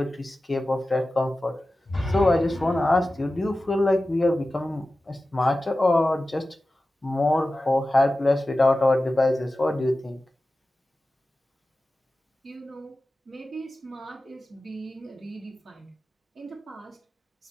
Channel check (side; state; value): both; normal; correlation 0.95